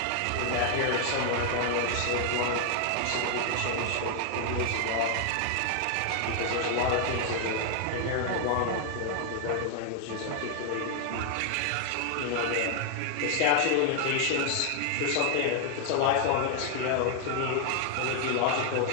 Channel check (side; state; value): both; different; correlation 0.00